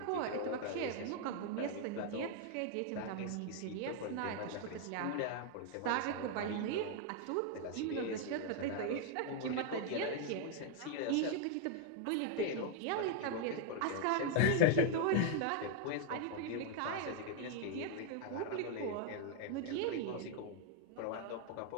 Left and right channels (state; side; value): different; both; correlation 0.00